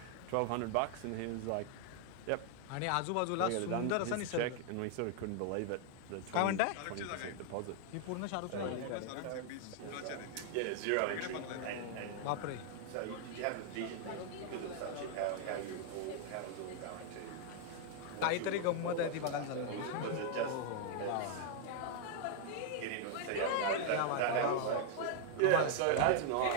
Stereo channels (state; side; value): different; both; correlation 0.00